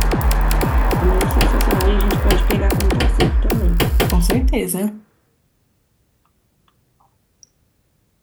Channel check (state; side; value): identical; both; correlation 1.00